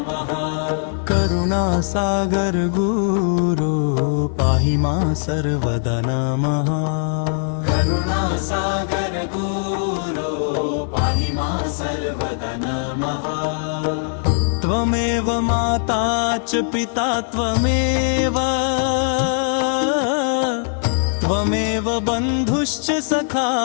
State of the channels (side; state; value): right; silent; 56 dB below the other